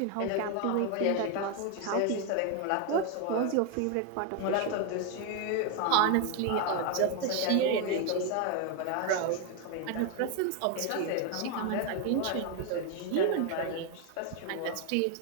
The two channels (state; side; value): different; both; correlation 0.01